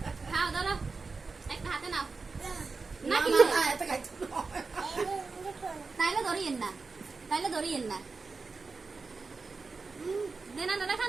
খাও দাও, একটা হাতে নাও। না কি তাইলে ধরিয়েন না, তাইলে ধরিয়েন না। দেনা দাদা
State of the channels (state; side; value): quieter; left; 4.3 dB